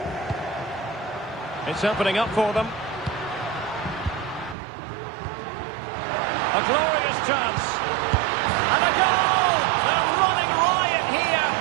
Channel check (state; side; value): drops out; left; at 4.5 s